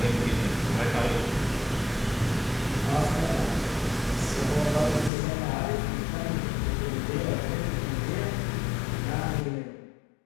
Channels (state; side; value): drops out; right; at 5.1 s